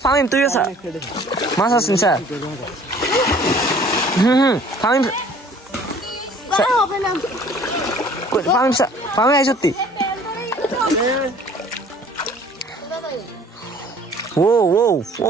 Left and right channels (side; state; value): both; normal; correlation 0.52